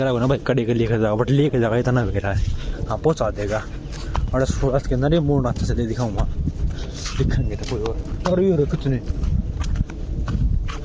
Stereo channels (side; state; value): both; identical; correlation 1.00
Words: हो ना भाई कड़ी के लेकर जाएगा बट लेकर जाएगा इतना बेरा है हाँ पहुँचा देगा और सूरज के अंदर ये मोड़ नाते से दिखाऊंगा दिखेंगे तो कोई और ये कितने